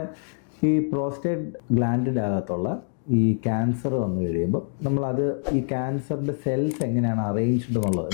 ഈ പ്രോസ്റ്റേറ്റ് ഗ്ലാൻഡിൻ്റെ അകത്തുള്ള ഈ ക്യാൻസർ വന്നു കഴിയുമ്പോൾ നമ്മളത് ഈ ക്യാൻസറിൻ്റെ സെൽസ് എങ്ങനെയാണ് അറേഞ്ച്ഡ് എന്നുള്ളത്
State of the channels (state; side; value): silent; right; digital silence